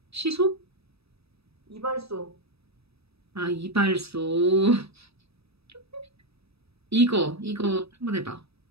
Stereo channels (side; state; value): left; late; 0.78 ms